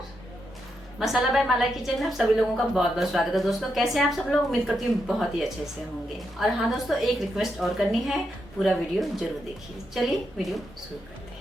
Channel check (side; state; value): both; normal; correlation 0.83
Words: मसाला बाय माला किचन में आप सभी लोगों का बहुत बहुत स्वागत है। दोस्तों, कैसे हैं आप सब लोग? उम्मीद करती हूँ बहुत ही अच्छे से होंगे। और हाँ दोस्तों, एक रिक्वेस्ट और करनी है, पूरा वीडियो जरूर देखिए। चलिए वीडियो शुरू करते